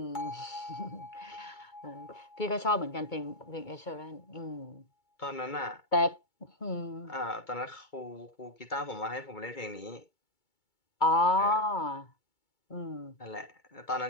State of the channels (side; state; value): right; late; 2.2 ms